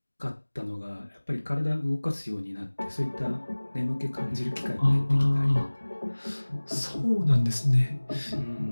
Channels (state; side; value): inverted; both; correlation -1.00